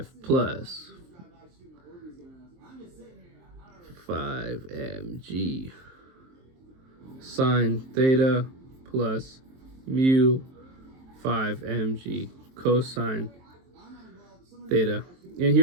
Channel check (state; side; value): late; left; 23 ms